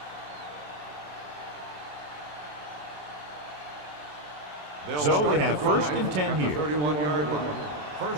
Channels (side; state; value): left; late; 27 ms